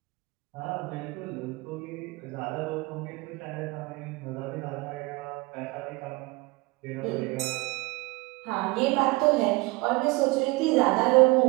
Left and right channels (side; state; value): left; quieter; 24.1 dB